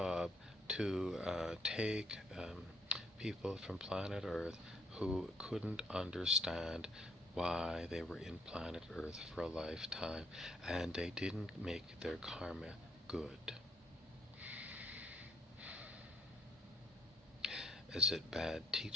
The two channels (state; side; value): normal; both; correlation 0.68